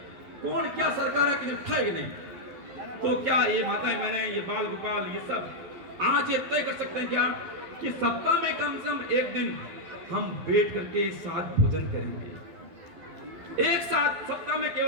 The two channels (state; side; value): late; left; 12 ms